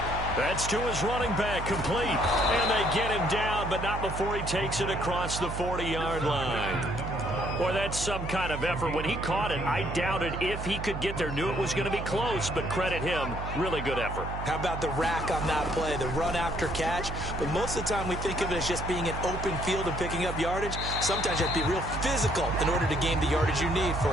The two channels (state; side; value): noise; right; hum, 6 dB below the sound